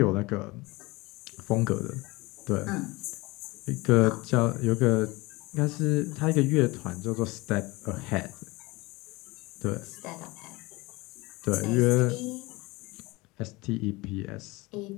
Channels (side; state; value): right; quieter; 22.8 dB